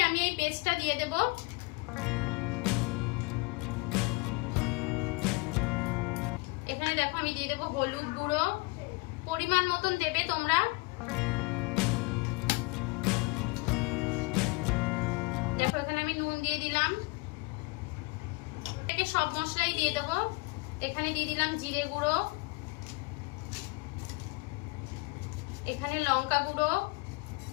আমি এই পেস্টটা দিয়ে দেব। এখানে দেখো আমি দিয়ে দেবো হলুদ গুঁড়ো, পরিমাণ মতন দেবে তোমরা। দেখো এখানে আমি নুন দিয়ে দিলাম। সব মশলাই দিয়ে দেবো। এখানে দিয়ে দিলাম জিরে গুঁড়ো, এখানে লঙ্কা গুঁড়ো,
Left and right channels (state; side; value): quieter; right; 27.0 dB